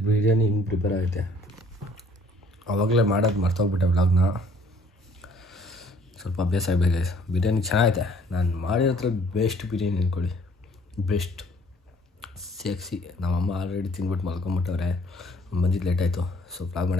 ಬಿರಿಯಾನಿ ಹಿಂಗೆ ಪ್ರಿಪೇರ್ ಆಗುತ್ತೆ. ಆವಾಗಲೇ ಮಾಡೋದು ಮರ್ತೋಗ್ಬಿಟ್ಟೆ ವ್ಲಾಗ್ನ. ಸ್ವಲ್ಪ ಅಭ್ಯಾಸ ಆಗಬೇಕು ಗೈಸ್. ಬಿರಿಯಾನಿ ಚೆನ್ನಾಗೈತೆ. ನಾನು ಮಾಡಿರೋದ್ರ ಬೆಸ್ಟ್ ಬಿರಿಯಾನಿ ಅಂದ್ಕೊಳ್ಳಿ. ಬೆಸ್ಟ್ ಸೇಕ್ಸಿ. ನಮ್ಮಮ್ಮ ಆಲ್ರೆಡಿ ತಿಂದ್ಬಿಟ್ಟು ಮಲ್ಕೊಂಬಿಟ್ಟವ್ರೆ. ಬಂದಿದ್ದು ಲೇಟ್ ಆಯಿತು. ಸೊ ವ್ಲಾಗ್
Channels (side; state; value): both; normal; correlation 0.59